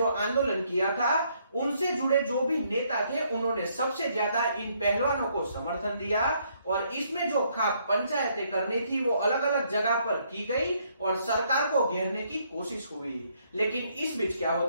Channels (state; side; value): inverted; both; correlation -0.70